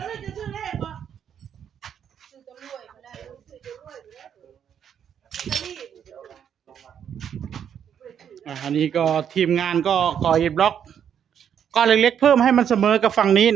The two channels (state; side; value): quieter; left; 8.6 dB